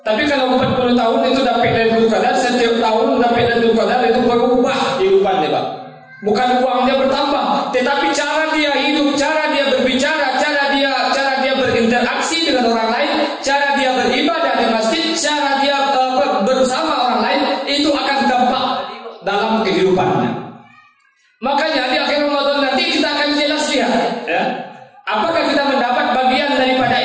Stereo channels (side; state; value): both; identical; correlation 1.00